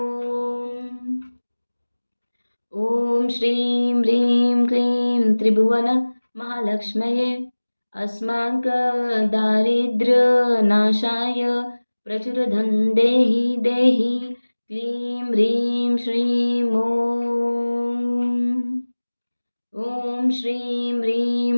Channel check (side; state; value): both; inverted; correlation -1.00